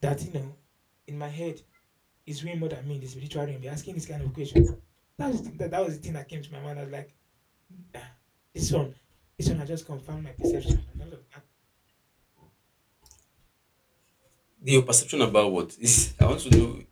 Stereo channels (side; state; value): both; identical; correlation 1.00